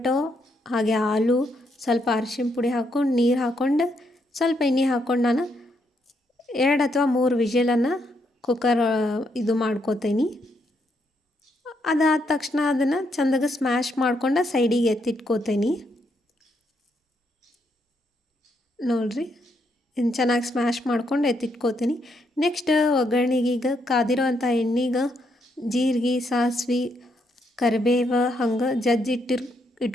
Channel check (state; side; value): normal; both; correlation 0.76